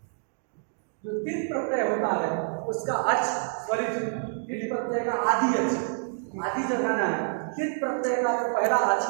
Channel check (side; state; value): left; silent; digital silence